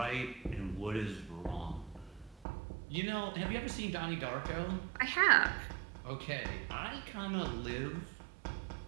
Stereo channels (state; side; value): drops out; left; at 2.5 s